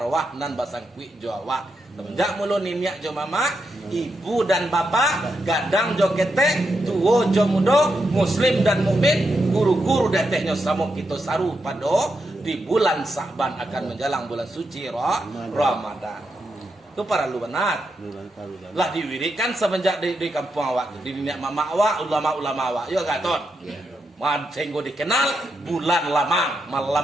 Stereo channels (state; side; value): normal; both; correlation 0.84